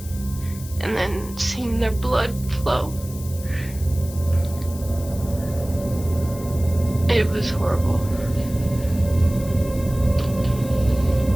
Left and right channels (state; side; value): noise; left; hiss, 16 dB below the sound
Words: And then seeing their blood flow. It was horrible.